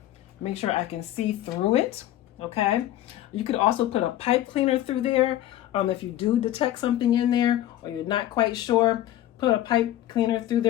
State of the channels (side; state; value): right; quieter; 13.3 dB